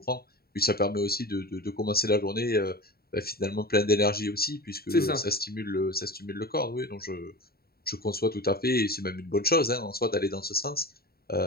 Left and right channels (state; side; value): late; right; 0.45 ms